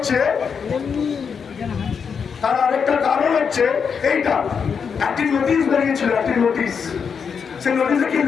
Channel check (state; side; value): quieter; right; 6.4 dB